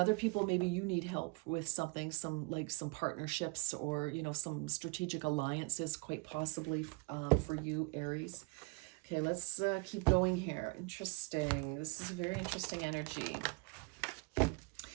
people, maybe you need help with something, some partnerships, or, you know, some strategic alliances, quite possibly for you, Aries. Okay, let's keep going here. Interesting. This is a very interesting energy.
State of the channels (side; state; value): left; quieter; 30.1 dB